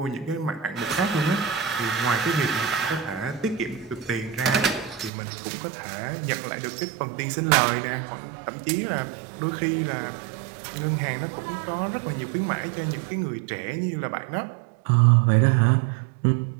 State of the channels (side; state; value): left; drops out; at 5.1 s